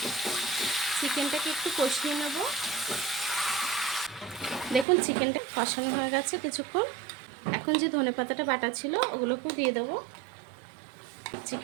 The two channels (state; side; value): drops out; left; at 4.9 s